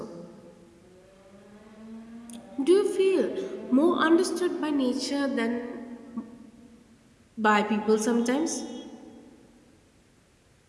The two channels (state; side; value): identical; both; correlation 1.00